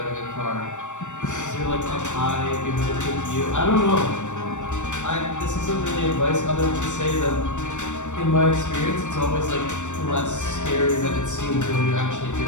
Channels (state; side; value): late; right; 0.85 ms